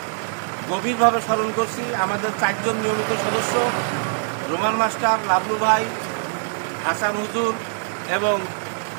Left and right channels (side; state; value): left; silent; digital silence